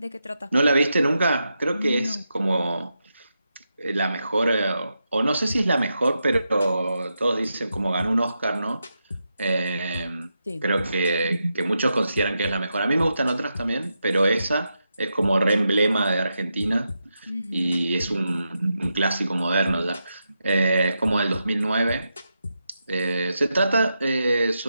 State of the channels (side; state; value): both; inverted; correlation -0.86